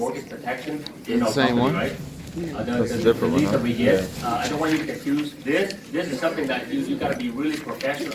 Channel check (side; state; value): both; identical; correlation 1.00